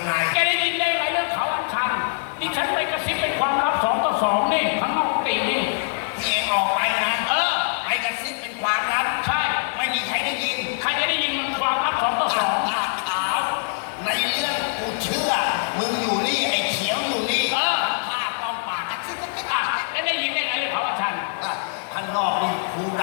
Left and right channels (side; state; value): right; silent; digital silence